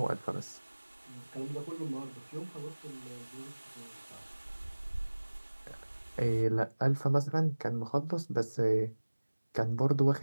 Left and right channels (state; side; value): inverted; both; correlation -1.00